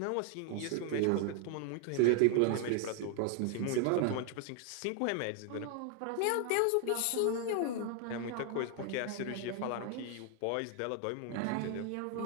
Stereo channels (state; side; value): different; both; correlation 0.00